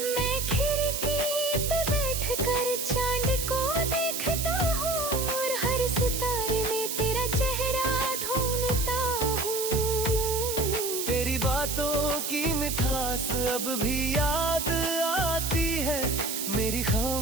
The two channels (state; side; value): noise; right; hiss, 3 dB below the sound